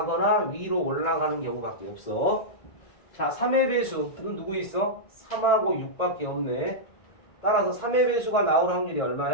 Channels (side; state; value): right; late; 1.9 ms